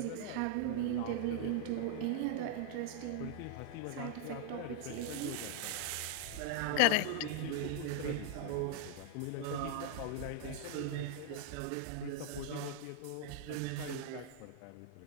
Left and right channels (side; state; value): both; different; correlation -0.01